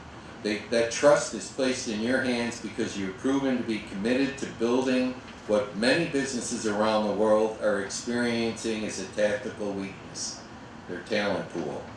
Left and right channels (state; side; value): identical; both; correlation 1.00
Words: That trust is placed in your hands because you've proven to be committed to building what many businesses around the world are experiencing as a tactical weakness, their talent pool.